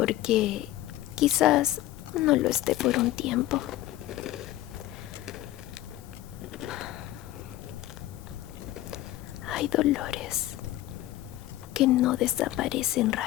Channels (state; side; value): quieter; right; 15.1 dB